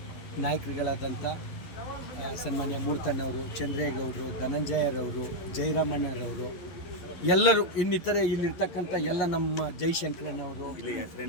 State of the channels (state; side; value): late; right; 11 ms